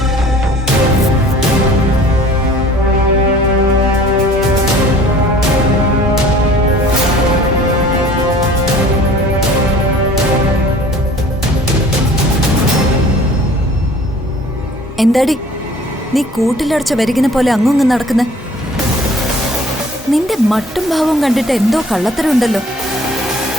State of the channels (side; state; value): both; normal; correlation 0.50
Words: എന്താടി നീ കൂട്ടിലടച്ച വരികിനെ പോലെ അങ്ങുങ്ങ് നടക്കുന്നെ? നിന്റെ മട്ടും ഭാവവും കണ്ടിട്ട് എന്തോ കള്ളത്തരമുണ്ടല്ലോ.